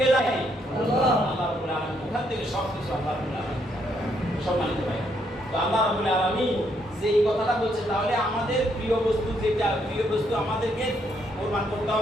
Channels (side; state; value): both; normal; correlation 0.73